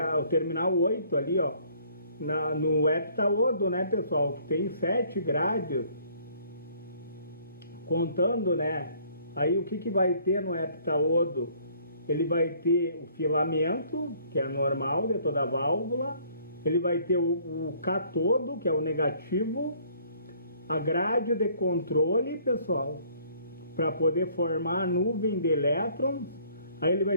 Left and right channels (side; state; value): both; inverted; correlation -0.60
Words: o terminal 8 ali, no heptaodo, né, pessoal, que tem 7 grades, contando, né? Aí o que vai ter no heptaodo? Ele vai ter o filamento, que é normal de toda a válvula, ele vai ter o catodo, que é o negativo, a grade de controle, pessoal, para poder formar a nuvem de elétrons. Aí ele vai